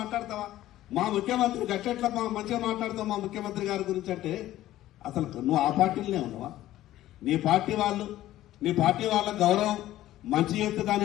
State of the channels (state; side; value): quieter; right; 14.4 dB